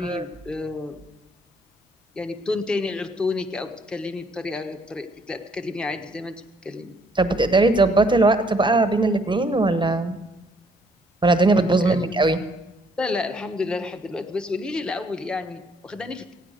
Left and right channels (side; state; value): both; normal; correlation 0.65